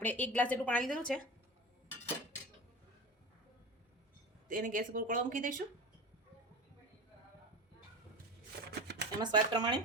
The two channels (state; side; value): normal; both; correlation 0.29